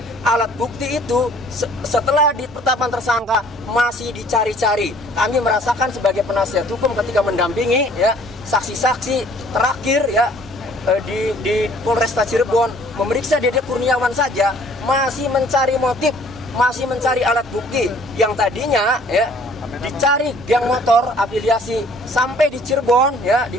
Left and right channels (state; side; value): normal; both; correlation 0.56